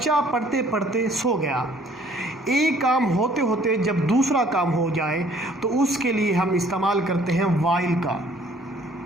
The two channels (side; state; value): both; normal; correlation 0.58